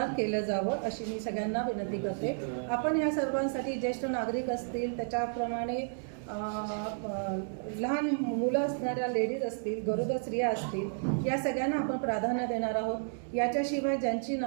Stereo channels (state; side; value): silent; left; digital silence